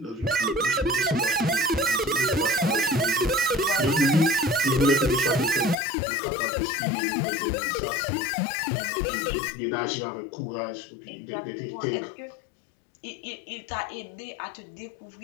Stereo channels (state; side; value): drops out; right; at 5.8 s